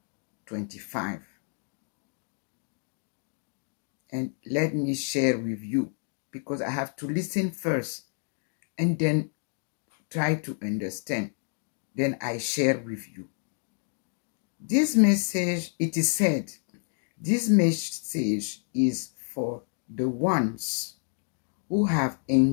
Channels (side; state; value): right; silent; 58 dB below the other